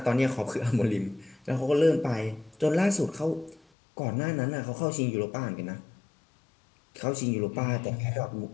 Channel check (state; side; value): drops out; right; at 3.6 s